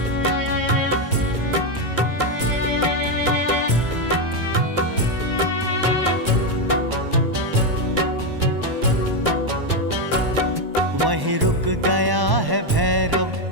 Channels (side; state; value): left; late; 1.1 ms